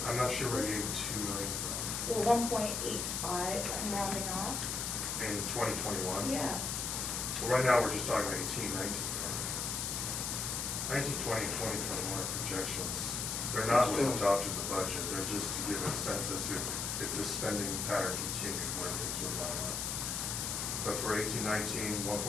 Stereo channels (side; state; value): left; noise; hiss, 1 dB below the sound